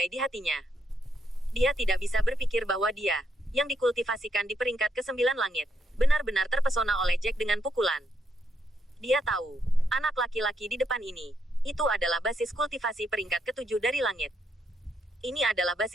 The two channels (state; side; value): normal; both; correlation 0.78